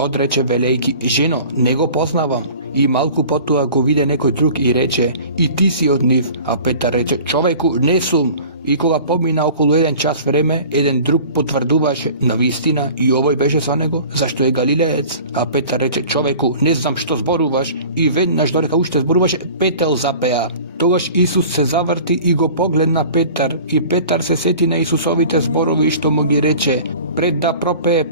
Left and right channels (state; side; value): inverted; both; correlation -0.43